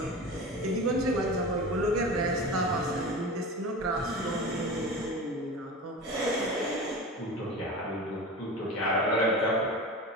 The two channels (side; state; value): both; normal; correlation 0.31